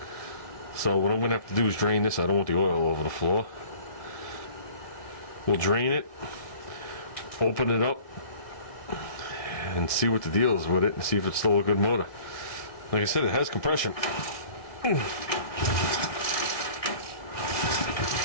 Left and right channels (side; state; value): right; late; 1.8 ms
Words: So what I'm going to have to do is drain this. I don't want the oil over the floor. We'll drain it, open it up, and see what the deal is with it, and see if it's still a good motor. Like I said, it has compression.